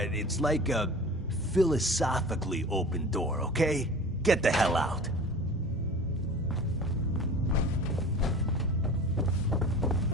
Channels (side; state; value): both; normal; correlation 0.38